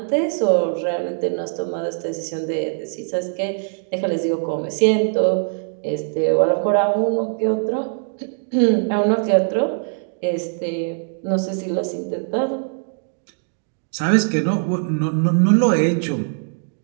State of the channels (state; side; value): silent; left; 65 dB below the other